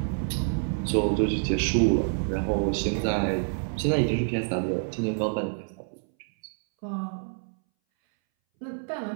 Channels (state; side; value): silent; left; 60 dB below the other